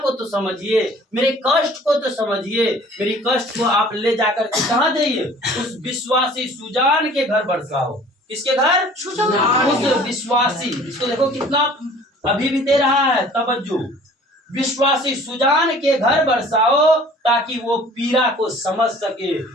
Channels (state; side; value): normal; both; correlation 0.50